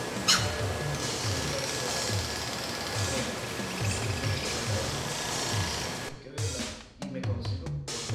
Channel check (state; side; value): identical; both; correlation 1.00